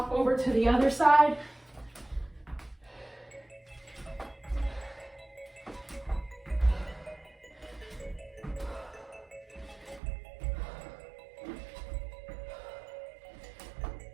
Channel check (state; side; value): drops out; left; at 10.0 s